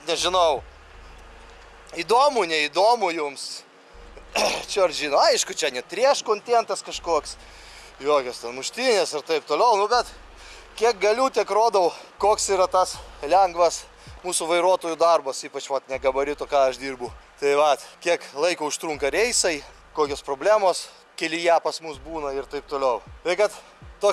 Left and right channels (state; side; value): identical; both; correlation 1.00